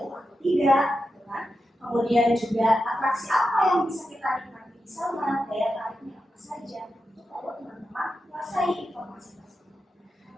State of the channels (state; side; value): normal; both; correlation 0.89